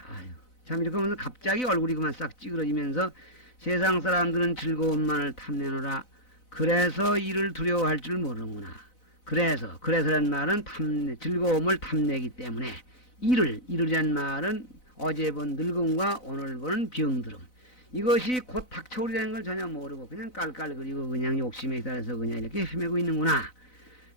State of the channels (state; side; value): late; right; 4.0 ms